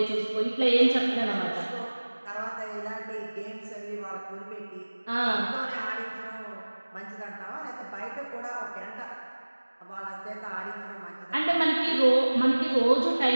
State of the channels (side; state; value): both; inverted; correlation -1.00